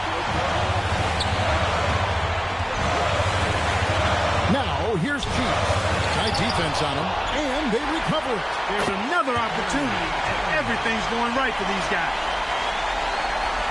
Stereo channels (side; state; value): both; identical; correlation 1.00